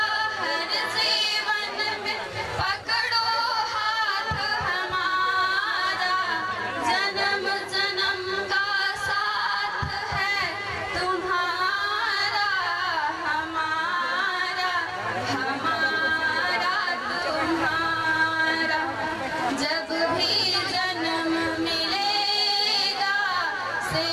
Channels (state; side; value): identical; both; correlation 1.00